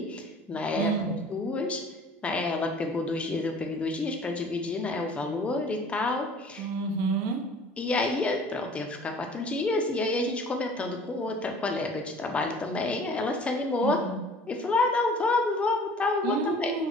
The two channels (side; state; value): both; normal; correlation 0.48